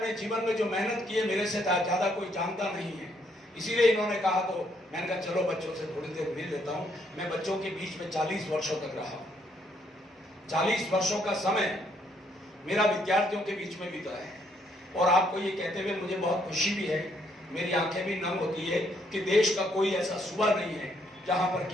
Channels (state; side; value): normal; both; correlation 0.71